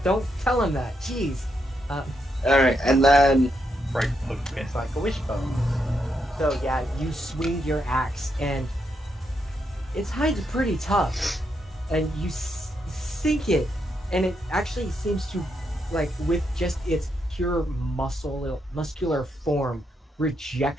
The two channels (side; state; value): both; normal; correlation 0.80